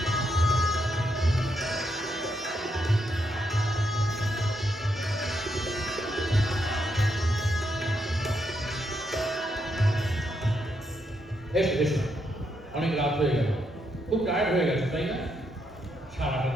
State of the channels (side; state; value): both; normal; correlation 0.79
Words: এসো এসো অনেক রাত হয়ে গেল খুব টায়ার্ড হয়ে গেছে তাই না সারাটা